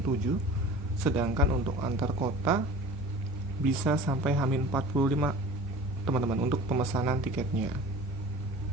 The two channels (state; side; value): normal; both; correlation 0.40